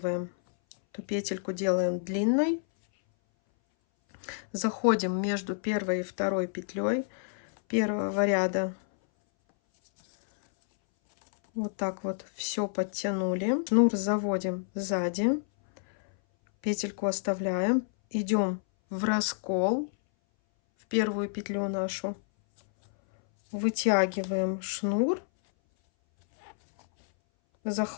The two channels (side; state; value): right; silent; 59 dB below the other